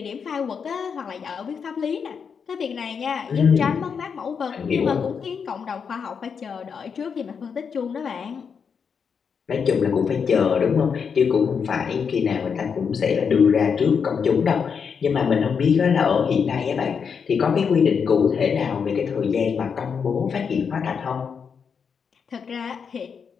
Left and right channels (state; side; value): quieter; right; 6.4 dB